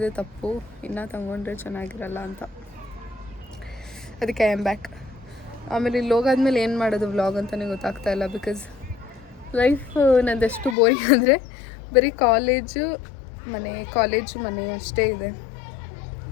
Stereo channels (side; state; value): right; drops out; at 10.8 s